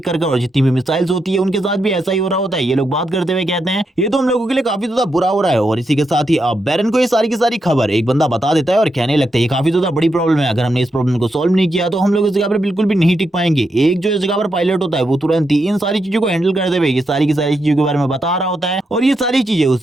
करके, और जितनी भी मिसाइल्स होती है उनके साथ भी ऐसा ही हो रहा होता है। ये लोग बात करते हुए कहते हैं ये तो हम लोगों के लिए काफी ज्यादा बुरा हो रहा है। और इसी के साथ ही अब बैरन को ये सारी की सारी खबर एक बंदा बता देता है और कहने लगता है ये काफी ज्यादा बड़ी प्रॉब्लम है, अगर हमने इस प्रॉब्लम को सॉल्व नहीं किया तो हम लोग इस जगह पर बिल्कुल भी नहीं टिक पाएंगे। एक जो इस जगह पर पायलट होता है वो तुरंत ही इन सारी चीजों को हैंडल करते हुए ये सारी की सारी चीजों के बारे में बता रहा होता है। और ये सारी चीजें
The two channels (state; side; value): normal; both; correlation 0.83